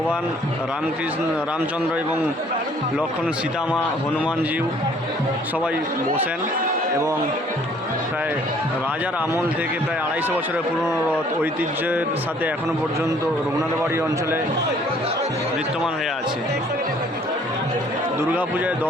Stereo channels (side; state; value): both; normal; correlation 0.59